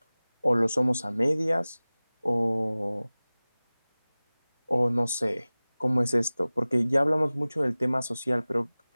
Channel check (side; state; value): both; inverted; correlation -0.98